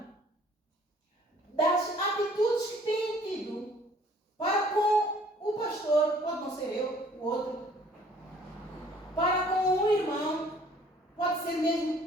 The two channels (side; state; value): both; normal; correlation 0.57